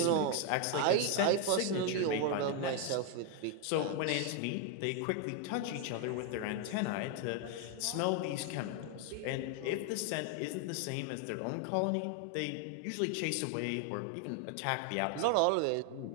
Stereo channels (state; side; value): different; both; correlation 0.01